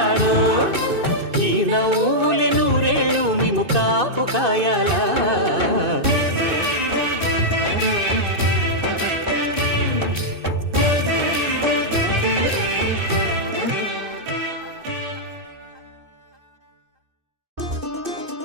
ఈ నవ్వులే నూరేళ్ళు మేము కాపు కాయాలా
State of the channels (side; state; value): left; late; 2.6 ms